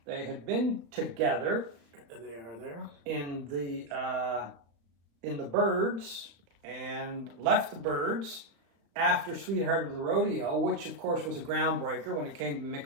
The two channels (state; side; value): late; left; 35 ms